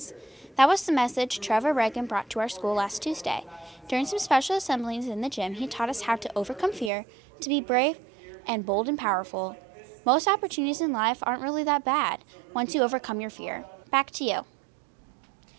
That was the message Trevor Reagan brought to our school last Tuesday. During some special assemblies in the gym, he taught us how to overcome fear, to be brave and bold and powerful. Most opportunities in life aren't really that bad once you overcome your fear. Back to you.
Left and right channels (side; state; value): left; drops out; at 6.9 s